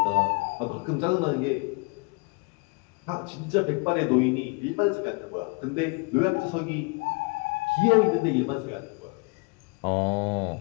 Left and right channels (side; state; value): right; quieter; 30.9 dB